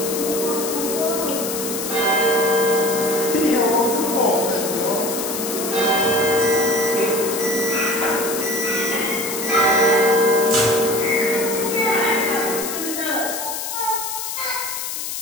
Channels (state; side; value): noise; left; hiss, 5 dB below the sound